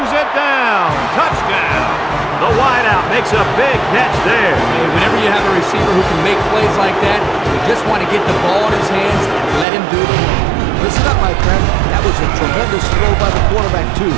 it down. Touchdown. The wideout makes a big catch there. Hey, whenever you have a receiver who can make plays like that, you just want to get the ball in his hands and let him do the work. Listen up, my friend. That was a tremendous throw by the quarterback, too.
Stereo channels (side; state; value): left; drops out; at 9.7 s